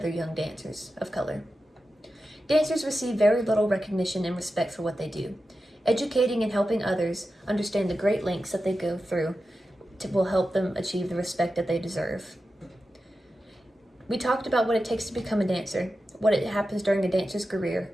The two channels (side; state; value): both; normal; correlation 0.92